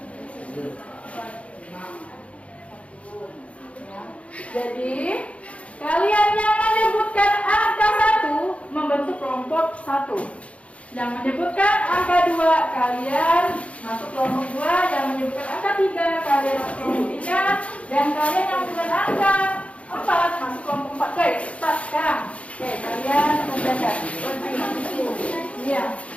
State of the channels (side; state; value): right; late; 0.063 ms